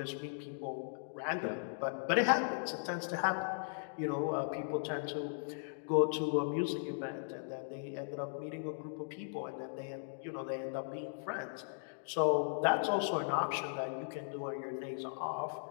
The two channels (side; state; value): right; silent; digital silence